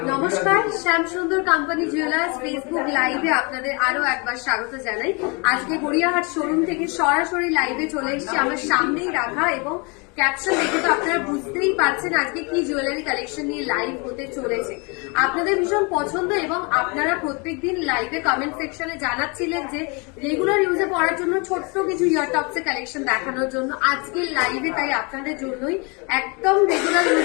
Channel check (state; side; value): quieter; right; 31.1 dB